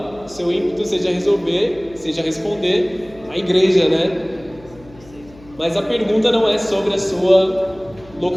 seu ímpeto seja responder a igreja, né? Mas a pergunta não é sobre a sua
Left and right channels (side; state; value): left; noise; hum, 23 dB below the sound